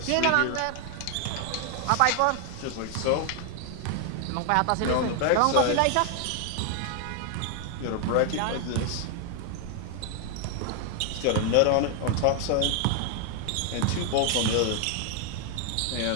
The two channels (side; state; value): both; different; correlation 0.00